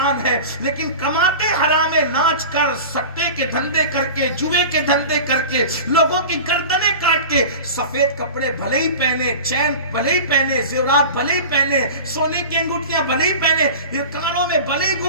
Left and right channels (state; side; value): inverted; both; correlation -0.34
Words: ہے، لیکن کماتے حرام ناچ کر، سٹے کے دھندے کر کے، جوئے کے دھندے کر کے، لوگوں کی گردنیں کاٹ کے، سفید کپڑے بھلے ہی پہنے، چین بھلے ہی پہنے، زیورات بھلے ہی پہنے، سونے کی انگوٹھیاں بھلے ہی پہنے، یہ کانوں میں بھلے ہی